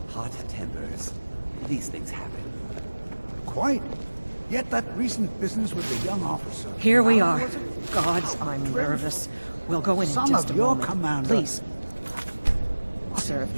hot tempers. These things happen. Quite. Yet that recent business with the young officer... Here we are. Gods, I'm nervous. We'll go in Son just of a your moment. commander. Please. Sir,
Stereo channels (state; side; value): inverted; both; correlation -1.00